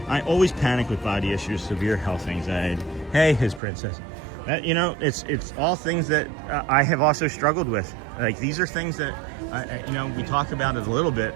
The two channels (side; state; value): left; drops out; at 3.6 s